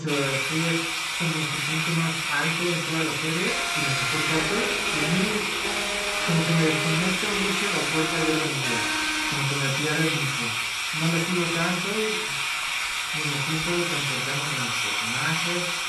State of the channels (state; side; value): identical; both; correlation 1.00